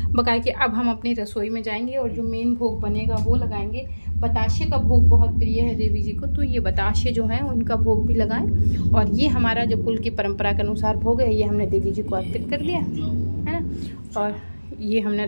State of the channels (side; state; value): both; inverted; correlation -1.00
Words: बकाया कि अब हम अपनी रसोई में जाएंगे और जो मेन भोग बनेगा वो लगाएंगे। बताशे का भोग बहुत प्रिय है देवी जी को, तो ये बताशे जो हैं उनका भोग भी लगाएं। और ये हमारा जो कुल की परंपरा के अनुसार भोग है, ये हमने देवी जी को अर्पित कर दिया है ना, और ये हमने